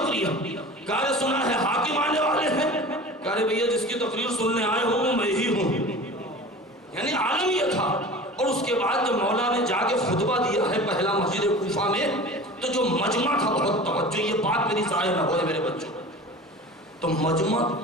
کہا سنا ہے حاکم آنے والے ہیں۔ کہا بھیا جس کی تقریر سننے آئے ہوں وہ میں ہی ہوں، یعنی عالم یہ تھا۔ اور اس کے بعد جب مولا نے جا کے خطبہ دیا ہے پہلا مسجد کوفہ میں، تو جو مجمع تھا، بہت توجہ، یہ بات میری ضائع نہ ہوئے میرے بچوں، تو مجمع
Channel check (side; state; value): both; normal; correlation 0.38